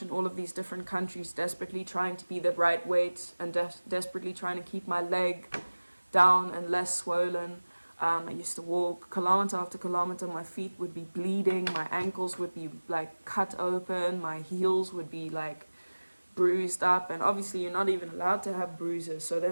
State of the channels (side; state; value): both; inverted; correlation -1.00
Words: in all of these different countries, desperately trying to be the right weight, and desperately trying to keep my leg down and less swollen. I used to walk kilometer after kilometer. My feet would be bleeding, my ankles would be like cut open, my heels would be like bruised up, and obviously you're not even allowed to have bruises, so